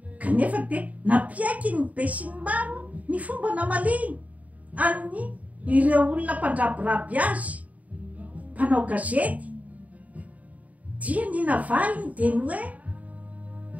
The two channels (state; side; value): late; left; 0.071 ms